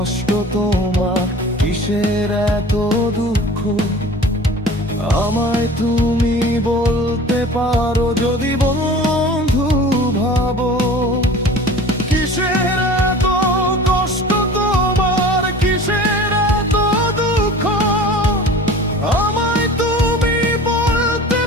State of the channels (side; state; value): both; normal; correlation 0.41